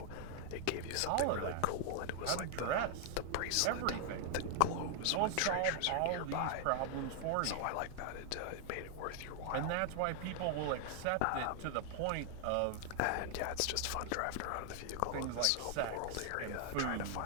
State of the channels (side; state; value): both; different; correlation 0.00